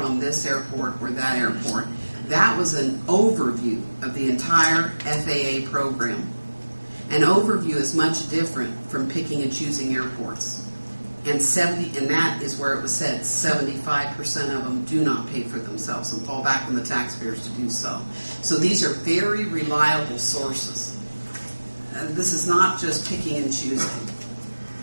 on this airport or that airport. That was an overview of the entire FAA program. An overview is much different from picking and choosing airports. And that is where it was said 75% of them do not pay for themselves and fall back on the taxpayers to do so. So these are very reliable sources. This is not just picking and choosing.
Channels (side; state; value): both; inverted; correlation -1.00